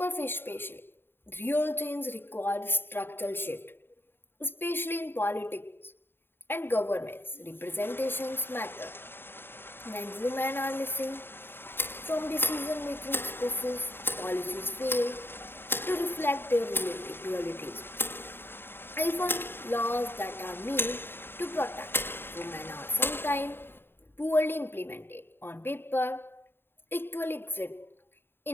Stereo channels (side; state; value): right; late; 0.11 ms